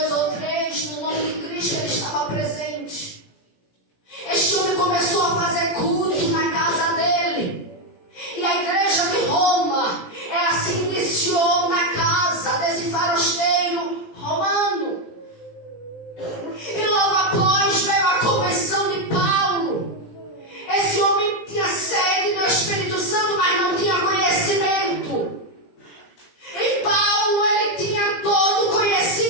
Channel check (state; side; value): late; right; 17 ms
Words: ou 3, no nome de Cristo, ele estava presente. Este homem começou a fazer culto na casa dele. E a igreja de Roma, ela se iniciou na casa desse farasteiro romano. E logo após veio a conversão de Paulo. Esse homem tinha sede do Espírito Santo, mas não tinha conhecimento. E Paulo, ele tinha todo o